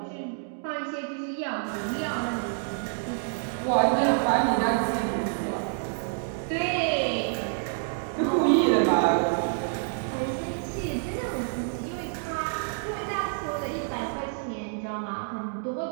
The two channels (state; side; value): silent; left; digital silence